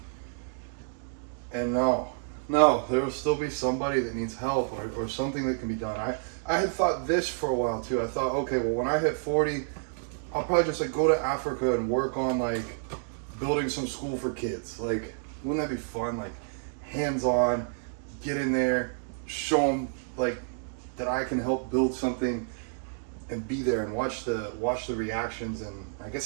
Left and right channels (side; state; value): left; silent; digital silence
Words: And no, there will still be somebody that needs help or something that can be done. I had thought this for a while too. I thought, okay, well, when I hit 40, I'll probably just like go to Africa and work on like building some school for kids. Like, wouldn't that be fun? Like, hands-on, get in there, show them like that I can help build something, and be there and watch the reactions. And I